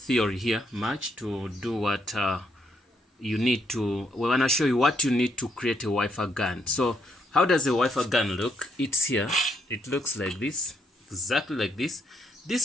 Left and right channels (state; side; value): normal; both; correlation 0.75